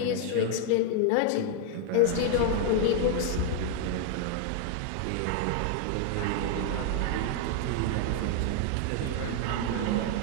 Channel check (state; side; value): different; both; correlation 0.00